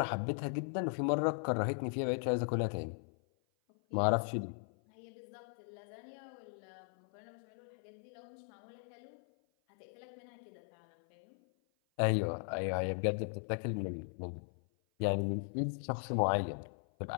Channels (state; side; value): silent; right; 52 dB below the other